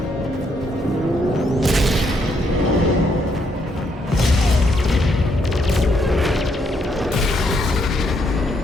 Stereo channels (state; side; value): normal; both; correlation 0.74